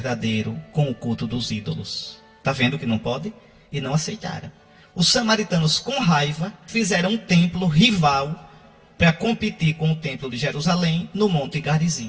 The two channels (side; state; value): both; identical; correlation 1.00